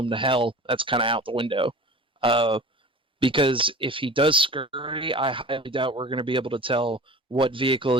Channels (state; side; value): normal; both; correlation 0.39